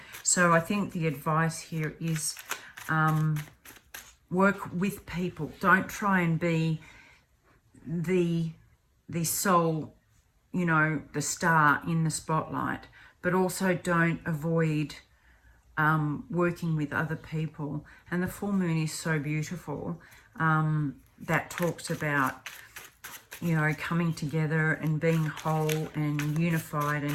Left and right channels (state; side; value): identical; both; correlation 1.00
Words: So I think the advice here is work with people. Don't try and be the sole you know, the star in the spotlight, but also don't avoid working with other people. And the full moon is so beautiful. That talks about, you know, coming together and being whole and unified